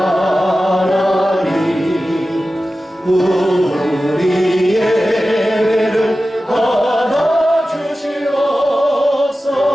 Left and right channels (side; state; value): both; normal; correlation 0.94